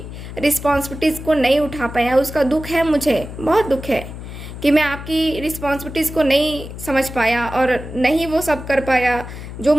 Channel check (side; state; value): left; noise; hum, 11 dB below the sound